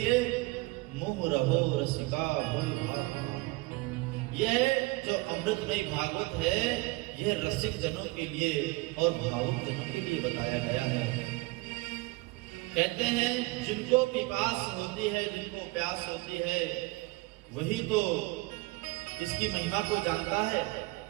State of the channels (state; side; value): quieter; left; 22.4 dB